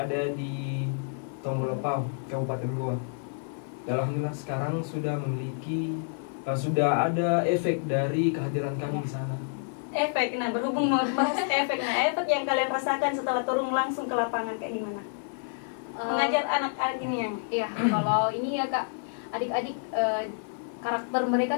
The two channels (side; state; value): right; silent; 59 dB below the other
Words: di Tonggolopau, Kabupaten Goa. Alhamdulillah sekarang sudah memiliki sudah ada efek dari kehadiran kami di sana. Efek, nah berhubung membahas efek, nah efek yang kalian rasakan setelah turun langsung ke lapangan kayak gimana? Mengajar anak-anak ini yang? Iya, kalau ini ya Kak, adik-adik karakter